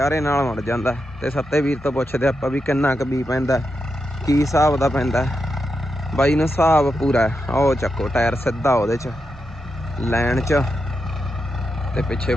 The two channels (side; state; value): both; normal; correlation 0.86